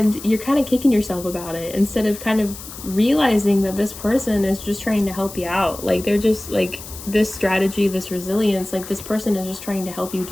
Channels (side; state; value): left; noise; hiss, 13 dB below the sound